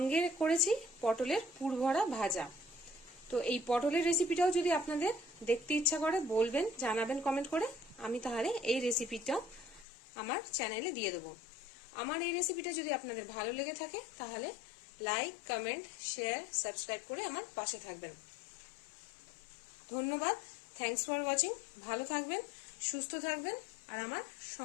করেছি পটলের পুরভরা ভাজা। তো এই পটলের রেসিপিটাও যদি আপনাদের দেখতে ইচ্ছা করে বলবেন, জানাবেন কমেন্ট করে, আমি তাহলে এই রেসিপিটাও আমার চ্যানেলে দিয়ে দেবো। আমার এই রেসিপিটা যদি আপনাদের ভালো লেগে থাকে তাহলে লাইক, কমেন্ট, শেয়ার, সাবস্ক্রাইব করে আমার পাশে থাকবেন। ধন্যবাদ, থ্যাঙ্কস ফর ওয়াচিং। ভালো থাকবেন, সুস্থ থাকবেন আর আমার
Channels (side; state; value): right; drops out; at 9.9 s